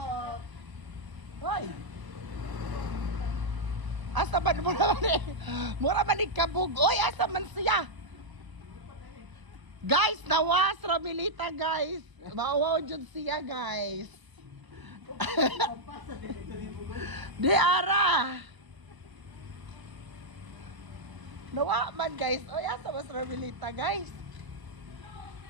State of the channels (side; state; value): left; late; 1.0 ms